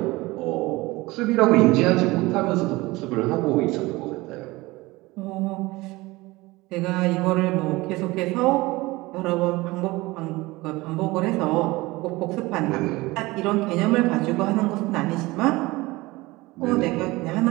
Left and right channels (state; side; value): quieter; left; 21.0 dB